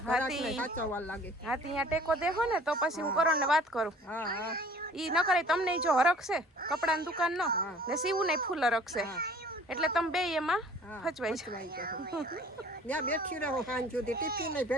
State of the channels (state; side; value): normal; both; correlation 0.52